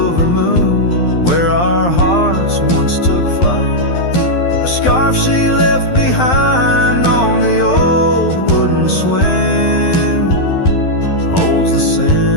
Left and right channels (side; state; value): right; late; 12 ms